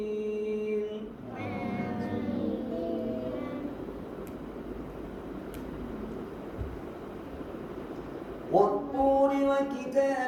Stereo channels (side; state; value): both; identical; correlation 1.00